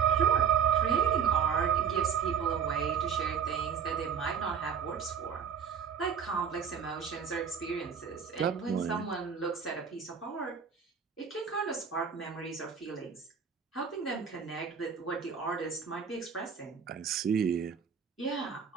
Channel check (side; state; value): left; quieter; 7.1 dB